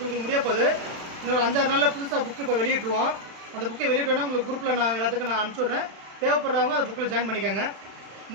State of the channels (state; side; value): late; left; 36 ms